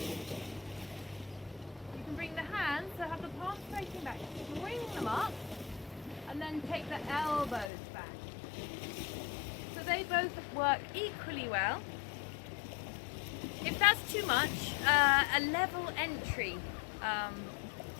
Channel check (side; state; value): right; drops out; at 7.7 s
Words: you can bring the hands, so have the palms facing back, bring them up, and then take the elbows back. So they both work equally well. If that's too much, a level entry